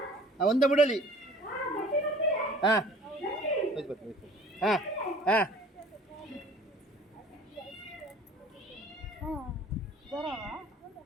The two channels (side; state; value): both; normal; correlation 0.49